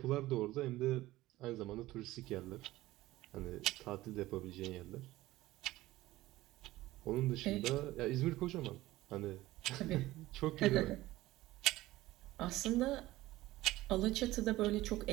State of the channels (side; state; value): left; quieter; 17.2 dB